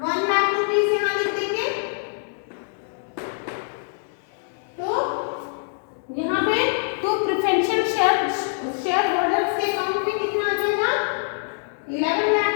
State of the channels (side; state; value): right; silent; digital silence